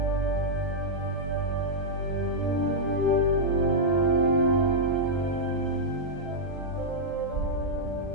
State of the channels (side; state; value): both; normal; correlation -0.07